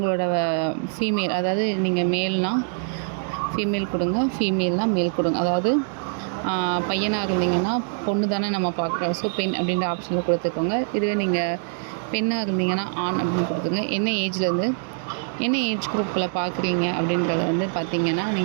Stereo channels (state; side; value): silent; left; digital silence